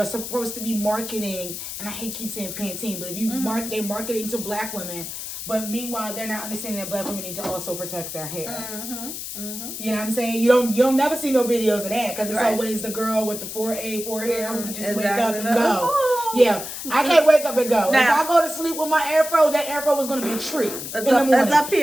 supposed to be marketing, and I hate keep saying Pantene, but if you they're marketing to black women, but meanwhile they're not understanding that black women need to also protect their hair. You know what I'm saying? You'll never see no videos of that because it's always the girl with the 4A hair who can just wake up and go. Yeah, I can't wake up and go. Now, if I go to sleep with my afro, that afro is going to be a tree in the morning. It's up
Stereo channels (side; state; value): left; noise; hiss, 8 dB below the sound